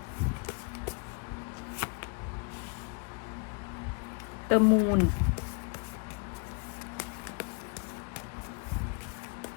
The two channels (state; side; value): quieter; right; 35.8 dB